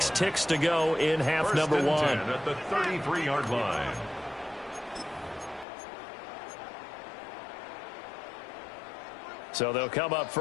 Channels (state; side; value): drops out; right; at 5.7 s